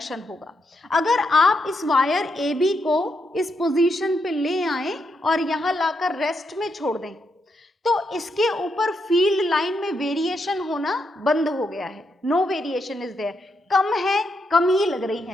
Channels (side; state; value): both; normal; correlation 0.81